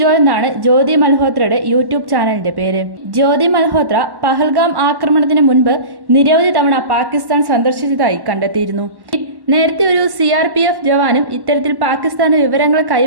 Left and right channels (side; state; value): left; late; 1.1 ms